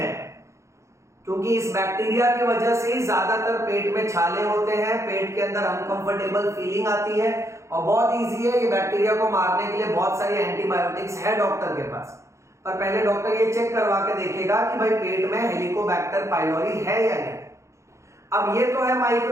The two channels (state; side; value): late; left; 0.14 ms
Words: क्योंकि इस बैक्टीरिया की वजह से ज्यादातर पेट में छाले होते हैं, पेट के अंदर अनकंफर्टेबल फीलिंग आती है, और बहुत इजी है ये बैक्टीरिया को मारने के लिए बहुत सारी एंटीबायोटिक्स है डॉक्टर के पास। पर पहले डॉक्टर ये चेक करवा के देखेगा कि भाई पेट में हेलिकोबैक्टर पाइलोरी है या नहीं। अब ये तो है